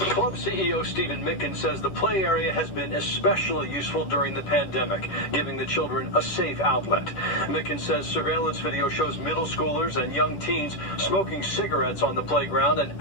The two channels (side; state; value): right; late; 10 ms